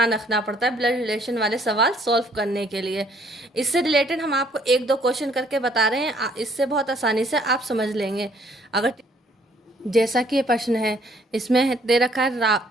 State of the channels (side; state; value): both; normal; correlation 0.63